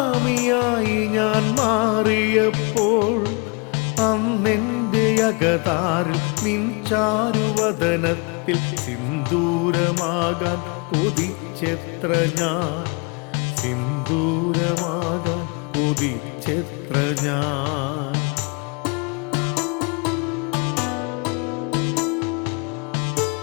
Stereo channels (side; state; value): right; quieter; 32.3 dB